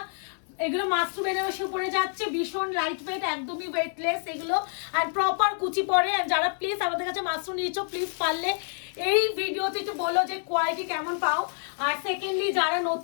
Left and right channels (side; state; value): right; silent; 60 dB below the other